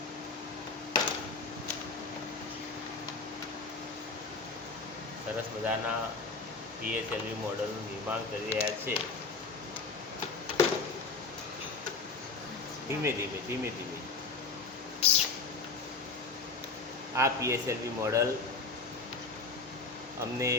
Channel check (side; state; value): right; quieter; 4.1 dB